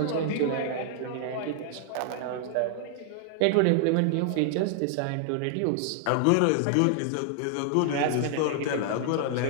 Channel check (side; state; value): both; different; correlation -0.01